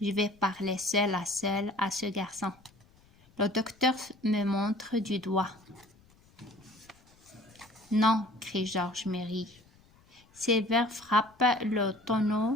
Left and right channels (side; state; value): left; noise; rumble, 29 dB below the sound